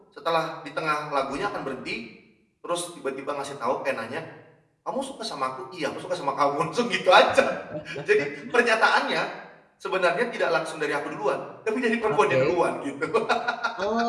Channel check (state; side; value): identical; both; correlation 1.00